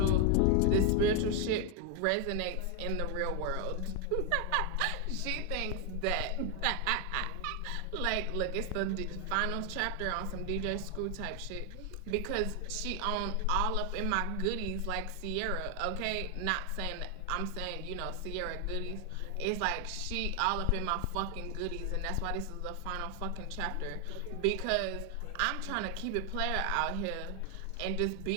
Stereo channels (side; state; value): both; different; correlation 0.01